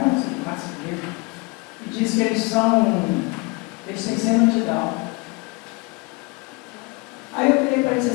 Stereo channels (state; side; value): quieter; right; 28.1 dB